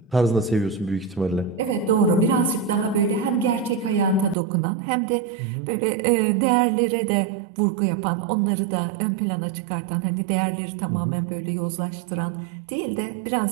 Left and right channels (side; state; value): left; drops out; at 4.4 s